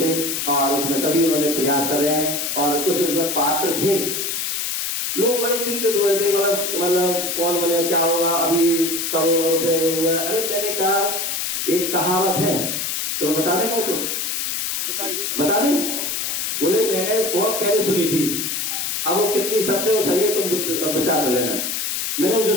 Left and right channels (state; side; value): noise; left; hiss, 1 dB below the sound